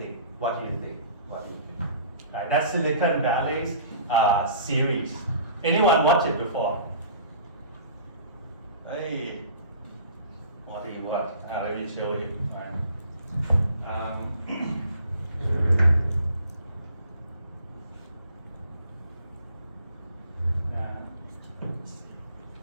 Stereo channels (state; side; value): inverted; both; correlation -0.49